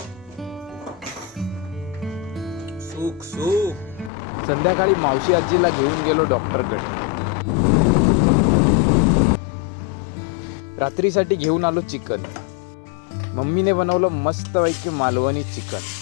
सुख सुख. संध्याकाळी मावशी आजीला घेऊन गेलो डॉक्टरकडे. रात्रीसाठी घेऊन आलो चिकन. मम्मीने बनवलं मस्तपैकी मालवणी चिकन.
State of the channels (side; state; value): right; drops out; at 4.1 s